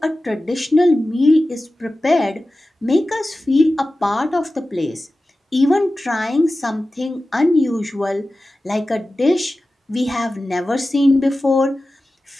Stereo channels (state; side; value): normal; both; correlation 0.95